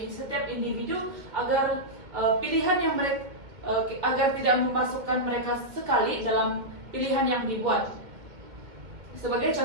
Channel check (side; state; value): left; late; 2.1 ms